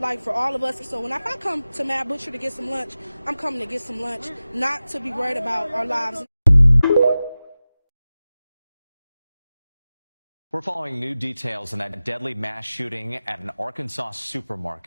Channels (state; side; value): inverted; both; correlation -0.95